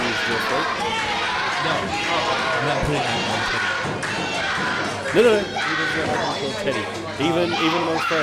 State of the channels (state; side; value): identical; both; correlation 1.00